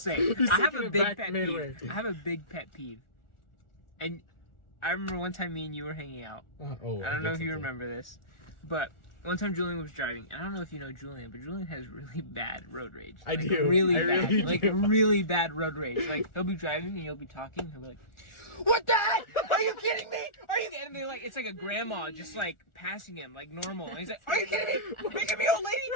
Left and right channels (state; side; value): late; right; 1.4 ms